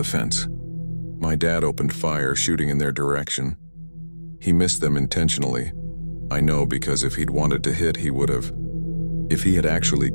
fence. My dad opened fire, shooting in their direction. He missed them intentionally. I know, because if he'd wanted to hit, he would have. If he had actually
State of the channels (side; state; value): both; inverted; correlation -1.00